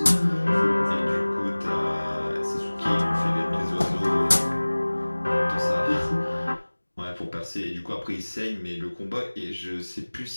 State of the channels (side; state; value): both; inverted; correlation -1.00